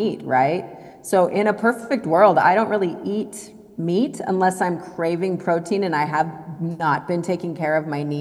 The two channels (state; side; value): identical; both; correlation 1.00